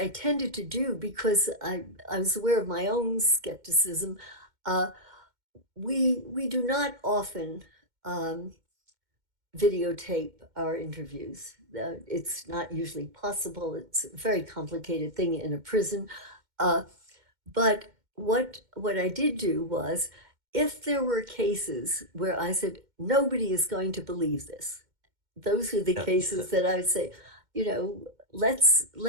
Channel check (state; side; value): late; left; 2.1 ms